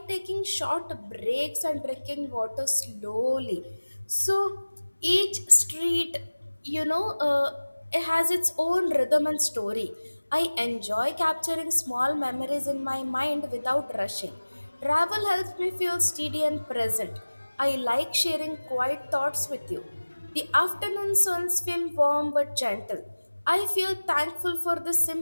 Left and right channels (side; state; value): both; inverted; correlation -1.00